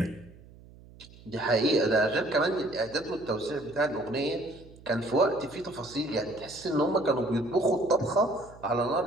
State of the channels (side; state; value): right; noise; hum, 22 dB below the sound